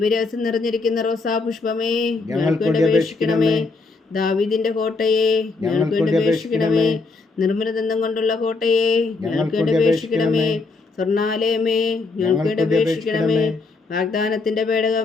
നിറഞ്ഞിരിക്കുന്ന റോസാ പുഷ്പമേ ഞങ്ങൾക്ക് വേണ്ടി അപേക്ഷിക്കണമേ. ദാവീദിന്റെ കോട്ടയെ ഞങ്ങൾക്ക് വേണ്ടി അപേക്ഷിക്കണമേ. നിർമ്മലദന്തം കൊണ്ടുള്ള കോട്ടയെ ഞങ്ങൾക്ക് വേണ്ടി അപേക്ഷിക്കണമേ. സ്വർണാലയമേ ഞങ്ങൾക്ക് വേണ്ടി അപേക്ഷിക്കണമേ. വാഗ്ദാനത്തിന്റെ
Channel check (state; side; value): quieter; right; 3.8 dB